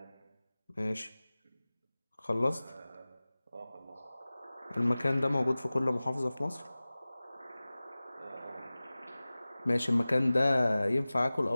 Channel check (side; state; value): both; inverted; correlation -0.98